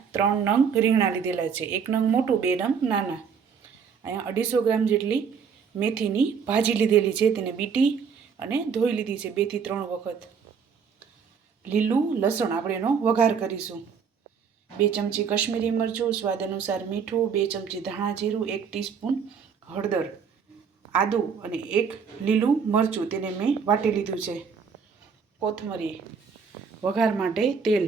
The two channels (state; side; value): quieter; left; 6.3 dB